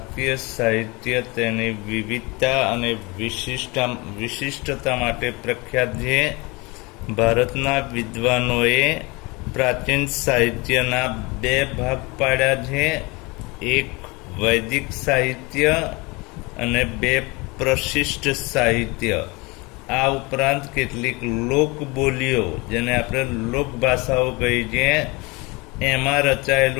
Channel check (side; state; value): right; quieter; 25.9 dB